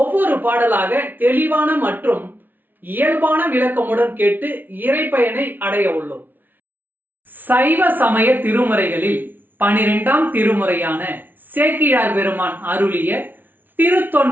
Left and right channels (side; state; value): left; late; 0.089 ms